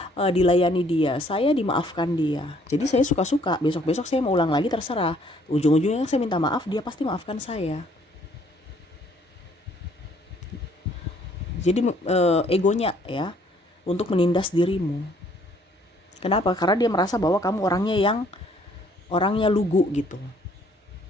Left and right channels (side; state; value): both; normal; correlation 0.62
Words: dilayani dia, saya dimaafkan dia. Jadi saya suka-suka, besok-besok saya mau ulang lagi terserah. Ujung-ujungnya saya minta maaf, dia pasti maafkan saya. Jadi egonya ya untuk menindas dirimu. Kenapa? Karena dia merasa bahwa kamu orangnya lugu gitu,